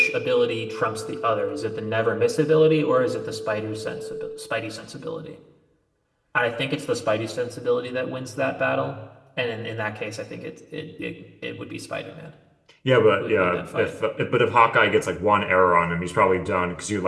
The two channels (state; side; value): identical; both; correlation 1.00